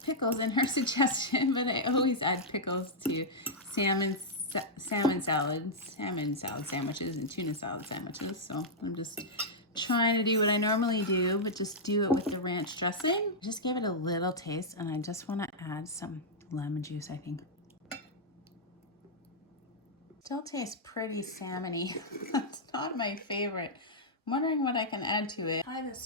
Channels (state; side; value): normal; both; correlation -0.07